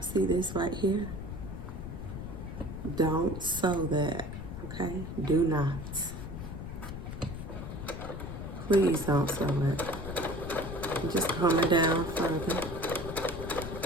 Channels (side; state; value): left; noise; rumble, 7 dB below the sound